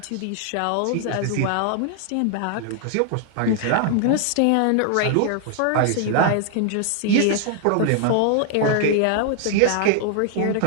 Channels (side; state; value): both; different; correlation 0.00